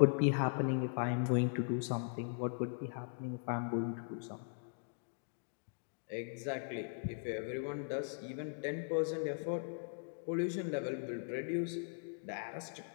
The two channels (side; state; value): right; silent; digital silence